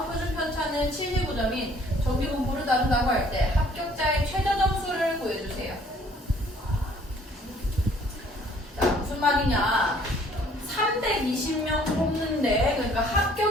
표준 편차는 75점인 정규분포를 다룬다고 할 때 합격자의 최저 점수를 구해주세요. 자, 무슨 말이냐? 320명 뽑는데, 그러니까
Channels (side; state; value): both; normal; correlation 0.58